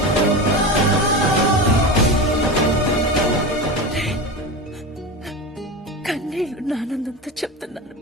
కన్నీళ్లు ఆనందంతో చెప్తున్నాను.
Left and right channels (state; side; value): normal; both; correlation 0.24